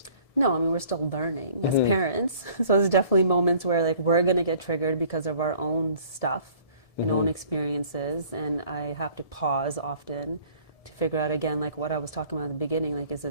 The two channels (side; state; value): right; late; 1.7 ms